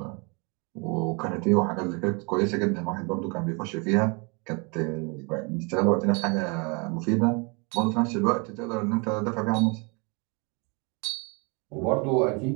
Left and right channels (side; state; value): left; quieter; 31.4 dB